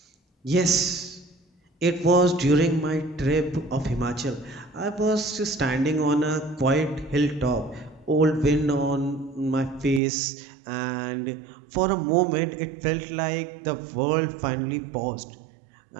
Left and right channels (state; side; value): drops out; left; at 10.0 s